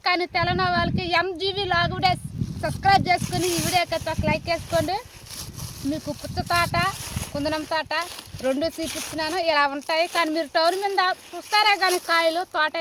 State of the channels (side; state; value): both; identical; correlation 1.00